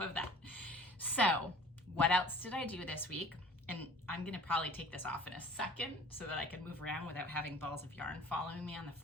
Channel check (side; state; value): both; normal; correlation 0.47